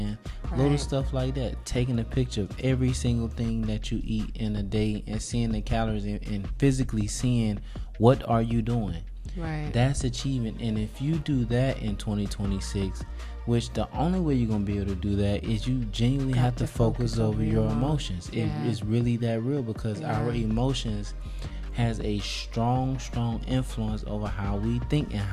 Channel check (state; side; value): identical; both; correlation 1.00